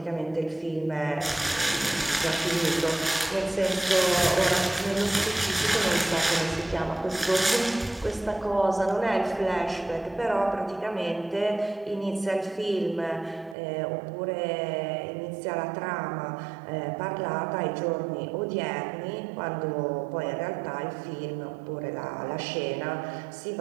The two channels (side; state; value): left; drops out; at 13.6 s